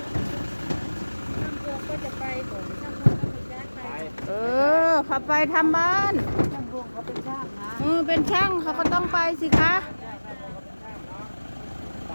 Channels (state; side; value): inverted; both; correlation -1.00